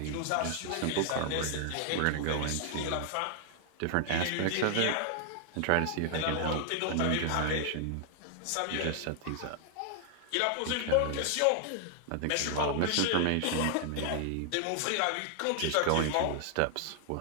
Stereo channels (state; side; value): different; both; correlation 0.00